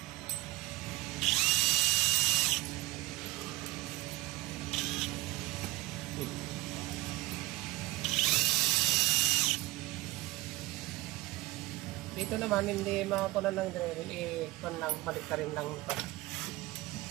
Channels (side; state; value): left; quieter; 19.8 dB